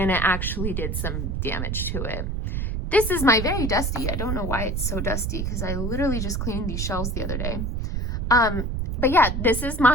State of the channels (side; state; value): right; noise; rumble, 1 dB below the sound